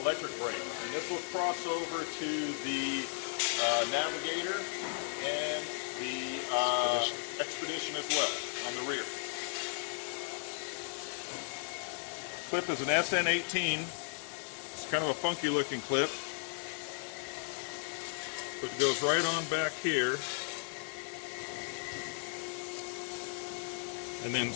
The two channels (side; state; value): right; silent; 54 dB below the other